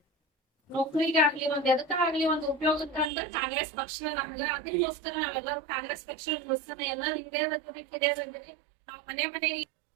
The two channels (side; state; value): left; drops out; at 3.1 s